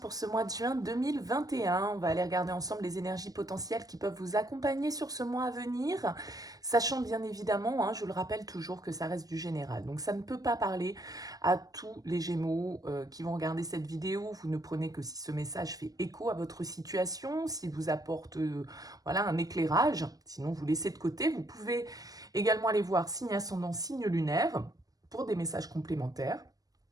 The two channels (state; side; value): late; left; 0.18 ms